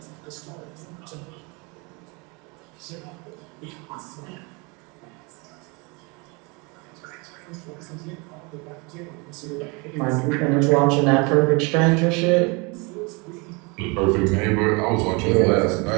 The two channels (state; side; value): quieter; left; 29.3 dB